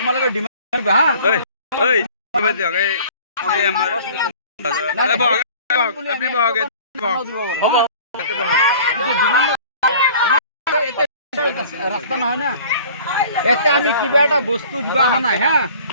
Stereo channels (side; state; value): both; inverted; correlation -0.48